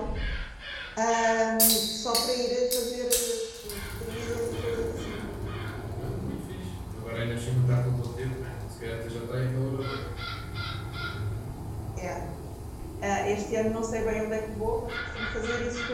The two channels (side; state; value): both; identical; correlation 1.00